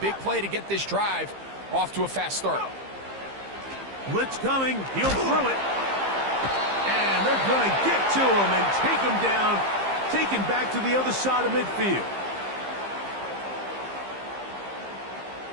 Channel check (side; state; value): left; late; 15 ms